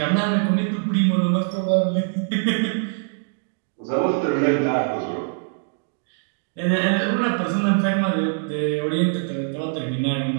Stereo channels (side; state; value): left; silent; digital silence